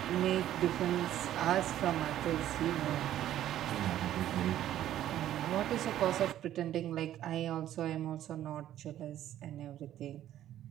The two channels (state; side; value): quieter; left; 12.2 dB